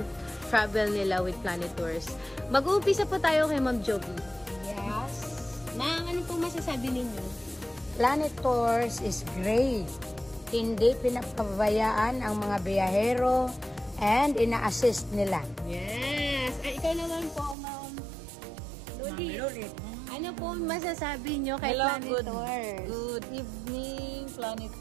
travel nila with Planet Tours. Mag-uumpisa po tayo kay Ma'am Joby. Yes. Ma'am, ano po masasabi ninyo? Planet Tours is great. Hindi pinapabayaan ang mga biyahero and ina-assist nila. Yes! Ay, ikaw naman po, Ma'am Luli. Ano po masasabi nyo kay Planet Tours? Good evening, Planet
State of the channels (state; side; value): drops out; left; at 17.6 s